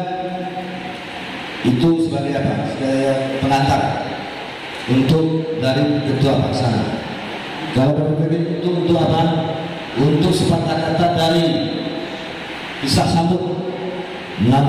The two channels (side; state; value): both; identical; correlation 1.00